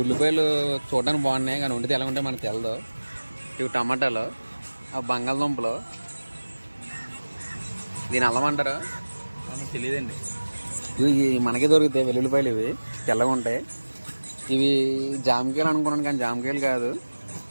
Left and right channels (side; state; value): both; inverted; correlation -1.00